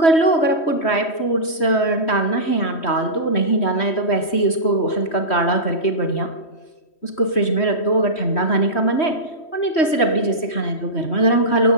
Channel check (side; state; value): right; late; 3.1 ms